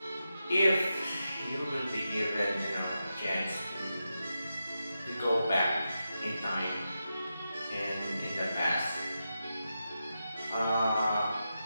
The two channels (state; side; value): inverted; both; correlation -0.89